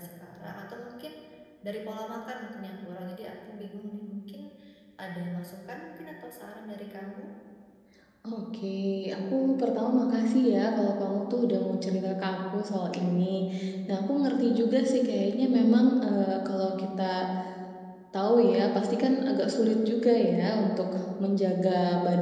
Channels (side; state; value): both; identical; correlation 1.00